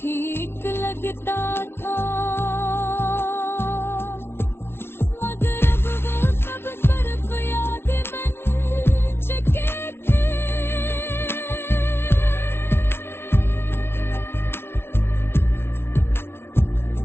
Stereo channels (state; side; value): late; right; 0.12 ms